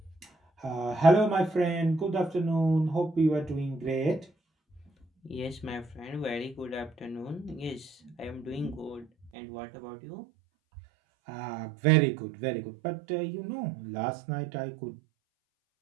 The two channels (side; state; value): left; drops out; at 9.3 s